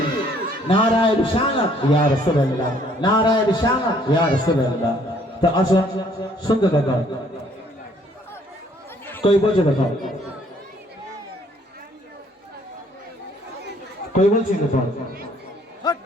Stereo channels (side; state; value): both; normal; correlation 0.62